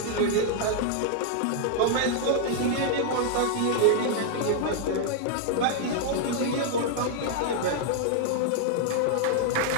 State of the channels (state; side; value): different; both; correlation 0.00